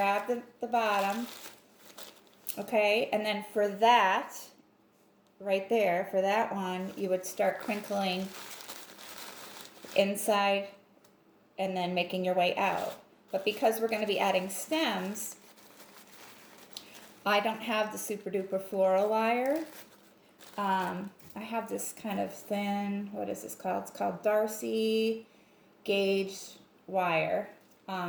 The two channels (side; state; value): both; identical; correlation 1.00